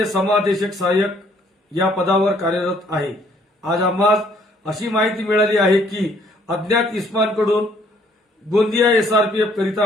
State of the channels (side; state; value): both; normal; correlation 0.63